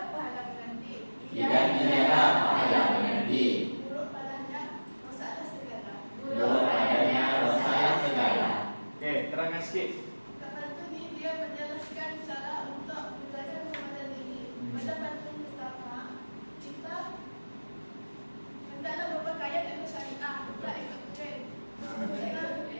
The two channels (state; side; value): inverted; both; correlation -1.00